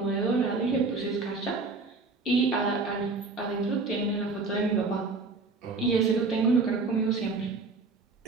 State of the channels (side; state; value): left; quieter; 3.9 dB